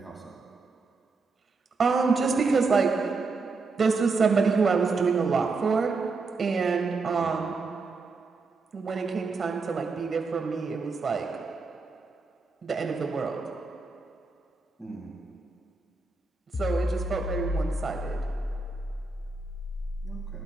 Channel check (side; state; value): left; quieter; 4.1 dB